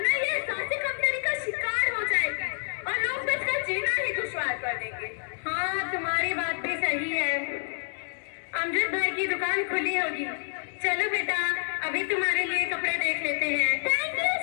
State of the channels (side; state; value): right; silent; digital silence